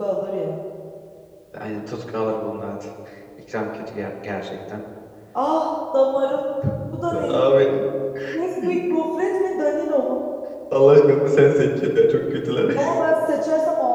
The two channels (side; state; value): both; identical; correlation 1.00